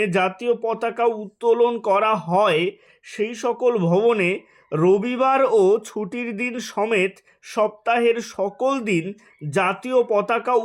জাতীয় পতাকা উত্তোলন করা হয় সেই সকল ভবনে রবিবার ও ছুটির দিন সমেত সপ্তাহের সকল দিন জাতীয় পতাকা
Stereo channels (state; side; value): identical; both; correlation 1.00